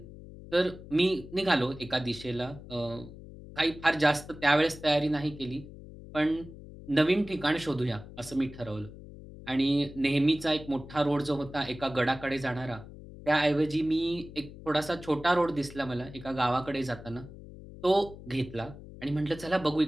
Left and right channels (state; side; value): noise; left; hum, 16 dB below the sound